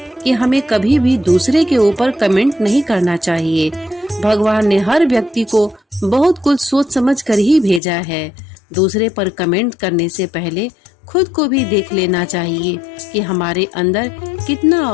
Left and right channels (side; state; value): right; drops out; at 7.8 s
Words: कि हमें कभी भी दूसरे के ऊपर कमेंट नहीं करना चाहिए। भगवान ने हर व्यक्ति को बहुत कुछ सोच समझ कर ही भेजा है। दूसरे पर कमेंट करने से पहले खुद को भी देख लेना चाहिए कि हमारे अंदर कितना